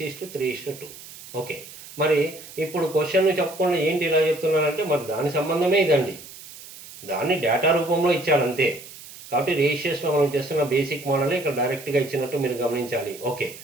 ఓకే, మరి ఇప్పుడు క్వశ్చన్ చెప్పకుండా ఏంటి ఇలా చెప్తున్నానంటే, మరి దాని సంబంధమే ఇదండి. దాన్ని డేటా రూపంలో ఇచ్చాడంతే. కాబట్టి రేషియోస్లో మనం చేస్తున్న బేసిక్ మోడలే ఇక్కడ డైరెక్ట్గా ఇచ్చినట్టు మీరు గమనించాలి. ఓకే,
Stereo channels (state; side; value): noise; right; hiss, 16 dB below the sound